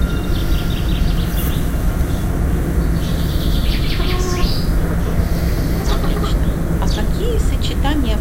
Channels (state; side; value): identical; both; correlation 1.00